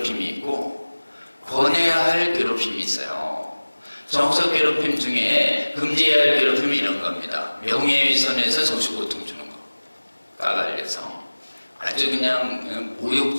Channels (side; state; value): both; inverted; correlation -1.00